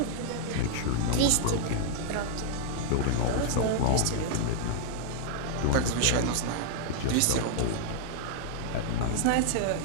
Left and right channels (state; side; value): different; both; correlation -0.01